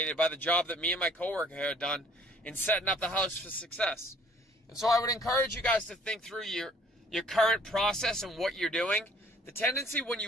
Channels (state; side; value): normal; both; correlation 0.57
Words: by the job that me and my coworker had done in setting up the house for success. And so I would encourage you guys to think through your current process and what you're doing. The tendency when